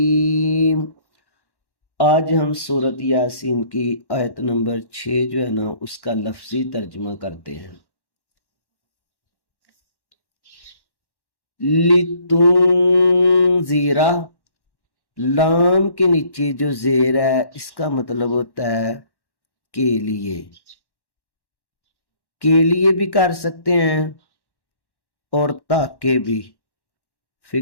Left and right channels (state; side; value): late; right; 1.1 ms